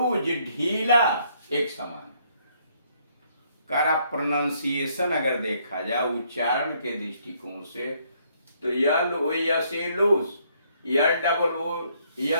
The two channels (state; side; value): inverted; both; correlation -0.68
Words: ढीला एक समान। प्रोनाउंसिएशन अगर देखा जाए उच्चारण के दृष्टिकोण से, तो L O S E loose, L double O